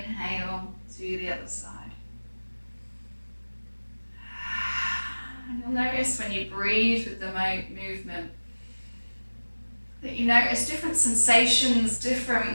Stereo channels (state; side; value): inverted; both; correlation -1.00